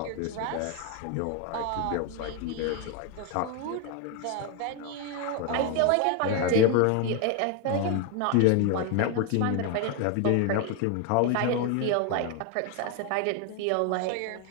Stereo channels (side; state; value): both; different; correlation 0.01